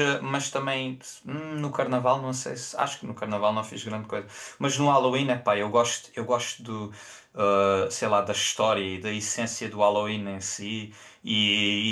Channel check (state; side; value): identical; both; correlation 1.00